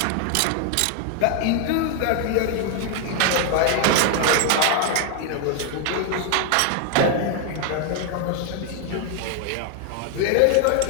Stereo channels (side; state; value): both; different; correlation 0.00